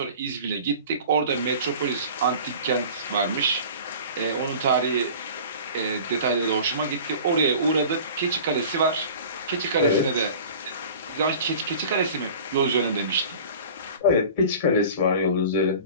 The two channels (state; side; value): inverted; both; correlation -0.41